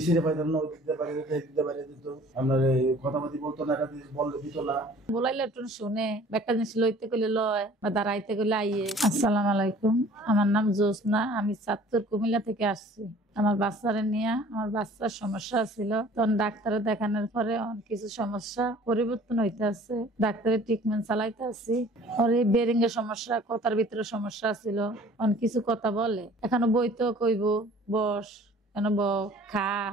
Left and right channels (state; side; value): normal; both; correlation 0.51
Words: পাইতেন না, দিতে পারে দিতে পারে দিত, আপনার কথাবার্তি বলতো না, একটা জিনিস বললে দিত না। বলাইলে একটু শুনে, একটা জিনিস লইতে গেলে লয় বা দাঁড়াইতে গেলে আইয়ে। আসসালামু আলাইকুম, আমার নাম জোসনা, আমি চাঁদপুর কুমিল্লা থেকে আসছি। আমার বাচ্চারে নিয়ে, আমার বাচ্চার সমস্যা ছিল, তখন ডাক্তারে দেখানোর পরে কিছু সমস্যা পরিবর্তন হইতে আছে, ডাক্তারের ট্রিটমেন্ট চালাইতে আছি। ওর এই বেরিং এর সমস্যা, কথার ভিতরে সমস্যা ছিল, অন কিছু কথা বলে, এখনো বইতো কইব বস, কেন খা,